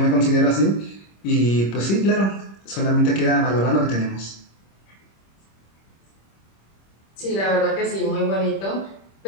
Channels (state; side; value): late; right; 26 ms